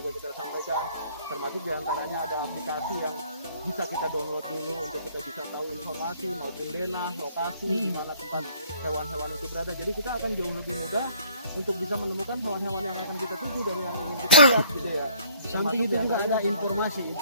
kita sampaikan, termasuk diantaranya ada aplikasi yang bisa kita download dulu untuk kita bisa tahu informasi maupun denah, lokasi di mana tempat hewan-hewan itu berada. Jadi kita akan jauh lebih mudah untuk bisa menemukan hewan-hewan yang akan kita tuju dan yang ingin kita lihat gitu ya. Samping itu juga ada informasi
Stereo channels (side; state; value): both; inverted; correlation -0.58